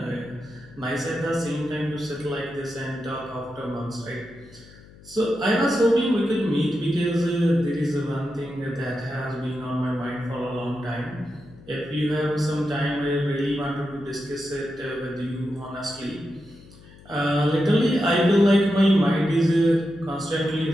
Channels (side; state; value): left; noise; hum, 22 dB below the sound